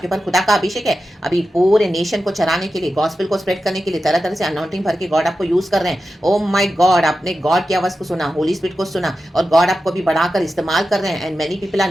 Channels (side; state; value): both; normal; correlation 0.92